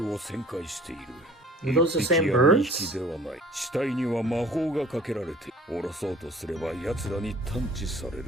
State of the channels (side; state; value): both; normal; correlation 0.50